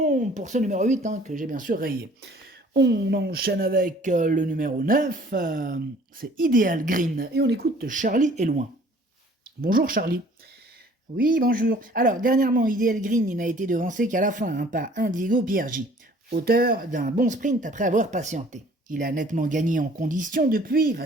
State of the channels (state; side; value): normal; both; correlation 0.54